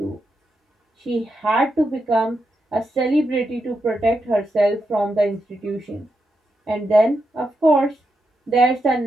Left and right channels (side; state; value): both; normal; correlation 0.85